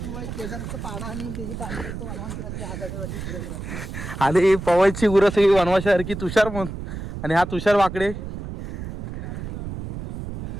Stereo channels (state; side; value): noise; right; rumble, 8 dB below the sound